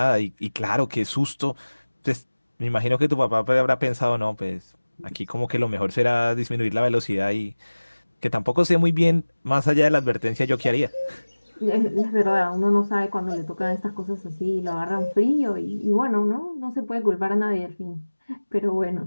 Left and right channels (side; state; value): both; inverted; correlation -1.00